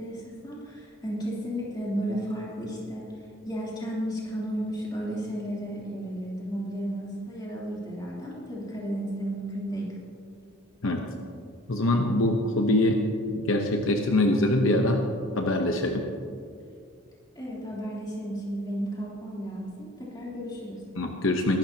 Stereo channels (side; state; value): both; normal; correlation 0.52